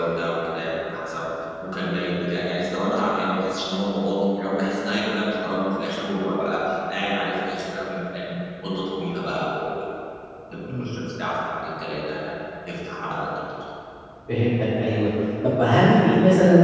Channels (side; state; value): both; identical; correlation 1.00